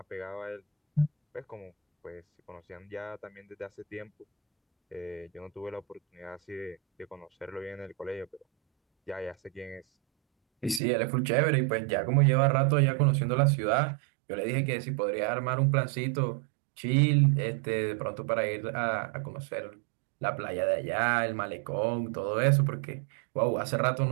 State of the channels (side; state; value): left; drops out; at 10.8 s